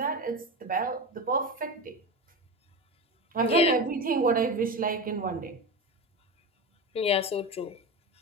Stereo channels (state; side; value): normal; both; correlation 0.23